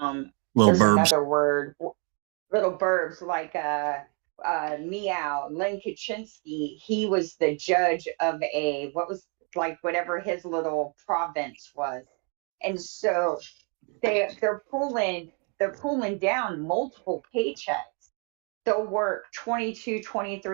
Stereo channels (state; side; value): quieter; left; 37.2 dB